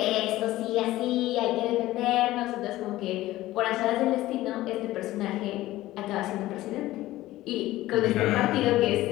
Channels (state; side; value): quieter; right; 16.4 dB